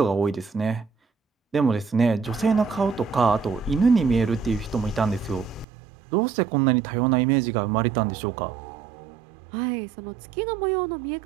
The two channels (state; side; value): drops out; left; at 5.7 s